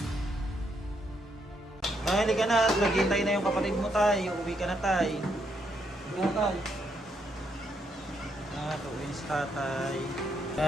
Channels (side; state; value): both; normal; correlation 0.76